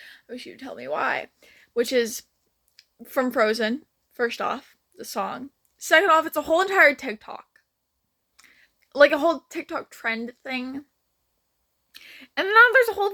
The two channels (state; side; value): identical; both; correlation 1.00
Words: wish you'd tell me why. Which is from Frozen. First off, the song. Second off, it's a whole entire TikTok, like a whole TikTok trend thing. And now there's a whole